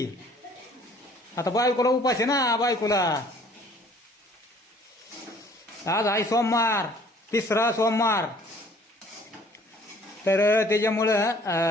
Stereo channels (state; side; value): normal; both; correlation 0.55